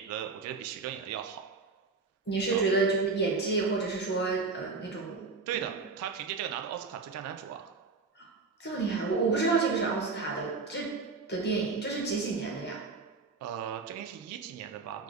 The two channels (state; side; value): quieter; left; 4.2 dB